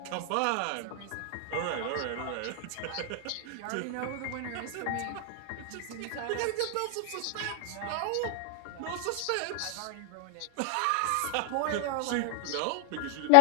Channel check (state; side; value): different; both; correlation 0.00